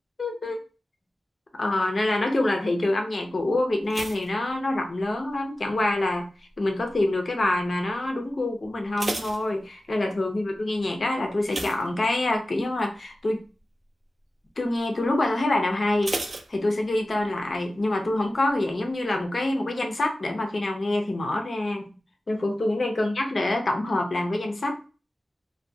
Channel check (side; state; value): both; normal; correlation 0.95